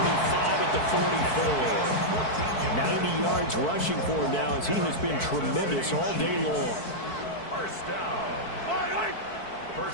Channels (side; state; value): right; late; 4.6 ms